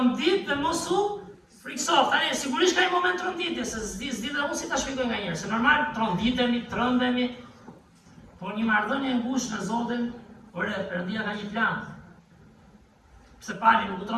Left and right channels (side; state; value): both; identical; correlation 1.00